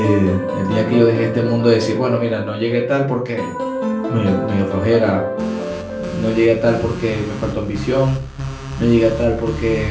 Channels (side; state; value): both; identical; correlation 1.00